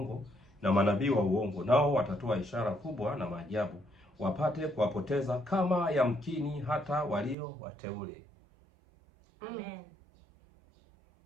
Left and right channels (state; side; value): drops out; left; at 7.4 s